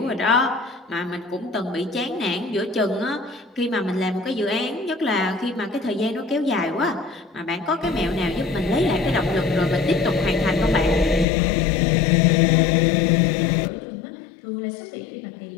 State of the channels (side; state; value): right; drops out; at 11.2 s